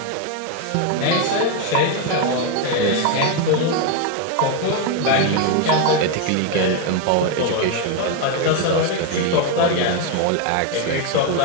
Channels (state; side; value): different; both; correlation 0.01